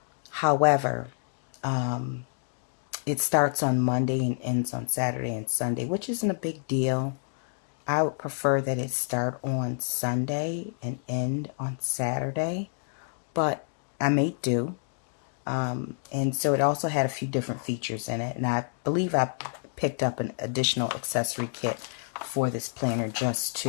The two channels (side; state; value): right; silent; digital silence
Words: However, it starts on Monday and ends on Saturday and Sunday, which isn't a big deal. I would prefer that it start on Sunday and end on Saturday, but I may do. And so it also had a few different features in it, and I believe I picked up an additional accessory kit for this planner just